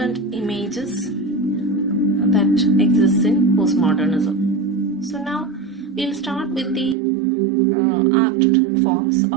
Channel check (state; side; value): drops out; left; at 7.0 s